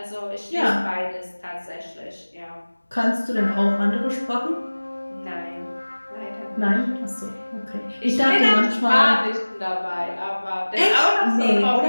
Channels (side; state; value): both; inverted; correlation -1.00